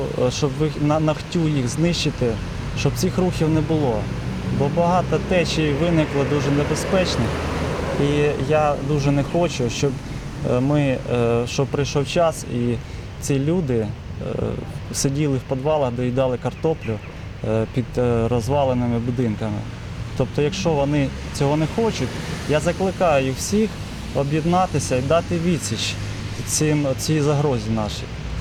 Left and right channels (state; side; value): identical; both; correlation 1.00